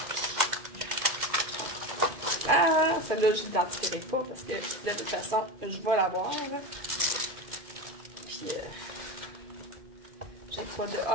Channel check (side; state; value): left; late; 2.1 ms